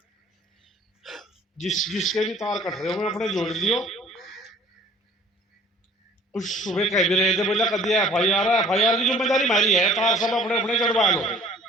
जिसके भी तार कट रहे हो अपने जोड़ लियो। कुछ सुबह कह भी रहे थे, बोला कभी एफआईआर की जिम्मेदारी हमारी है, तार सब अपने अपने चढ़वा लो।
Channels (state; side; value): normal; both; correlation 0.51